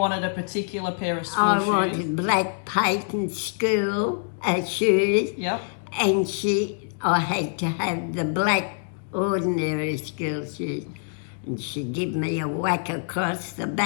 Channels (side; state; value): right; silent; digital silence